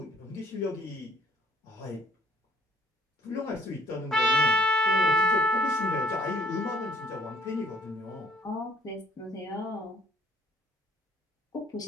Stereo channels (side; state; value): both; normal; correlation 0.58